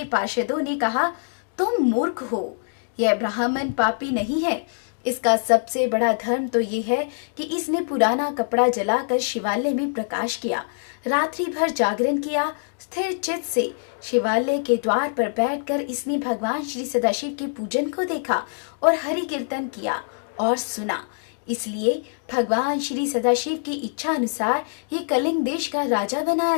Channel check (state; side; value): silent; right; digital silence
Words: पार्षदों ने कहा, तुम मूर्ख हो, यह ब्राह्मण पापी नहीं है। इसका सबसे बड़ा धर्म तो ये है कि इसने पुराना कपड़ा जलाकर शिवालय में प्रकाश किया, रात्रि भर जागरण किया। स्थिर चित्त से शिवालय के द्वार पर बैठकर इसने भगवान श्री सदाशिव के पूजन को देखा और हरि कीर्तन किया और सुना। इसलिए भगवान श्री सदाशिव की इच्छा अनुसार ये कलिंग देश का राजा बनाया